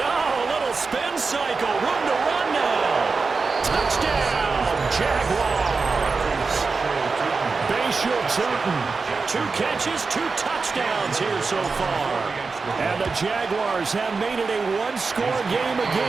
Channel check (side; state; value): left; quieter; 4.4 dB